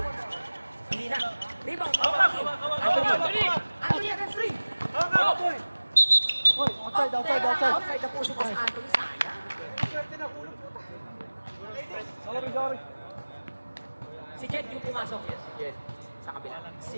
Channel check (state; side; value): inverted; both; correlation -1.00